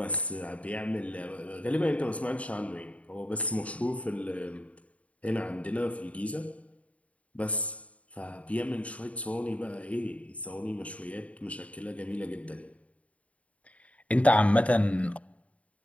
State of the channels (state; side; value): late; right; 0.066 ms